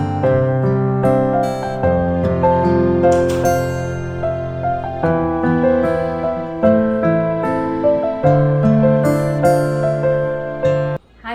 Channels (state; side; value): identical; both; correlation 1.00